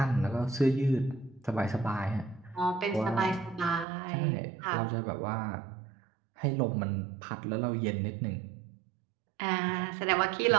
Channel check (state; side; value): drops out; left; at 3.9 s